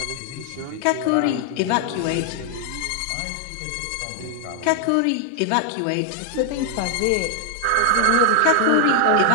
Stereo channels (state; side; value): different; both; correlation 0.00